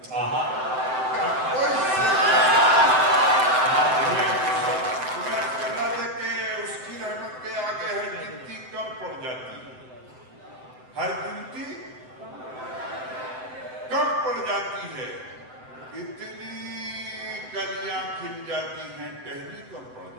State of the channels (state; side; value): late; left; 7.8 ms